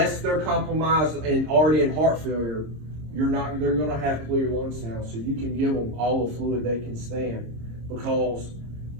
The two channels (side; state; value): left; late; 26 ms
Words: compromised and already in heart failure, they're going to have clear lung sounds. So you can give them all the fluid they can stand, because